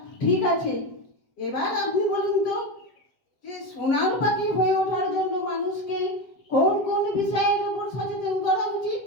ঠিক আছে, এবার আপনি বলুন তো যে সোনার পাখি হয়ে ওঠার জন্য মানুষকে কোন কোন বিষয়ের উপর সচেতন করা উচিত?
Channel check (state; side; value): late; right; 8.0 ms